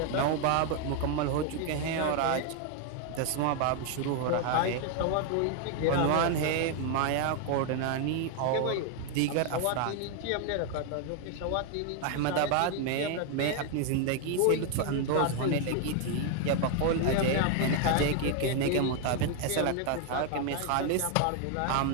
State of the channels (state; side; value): different; both; correlation 0.01